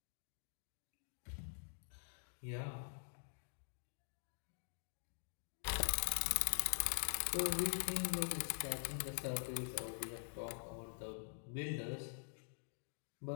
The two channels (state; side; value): silent; right; digital silence